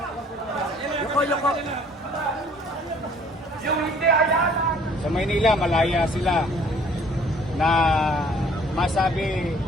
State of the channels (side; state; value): both; normal; correlation 0.56